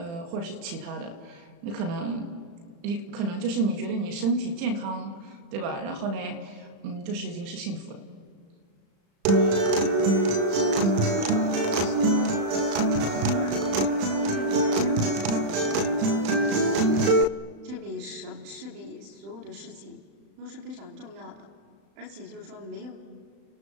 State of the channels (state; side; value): late; left; 35 ms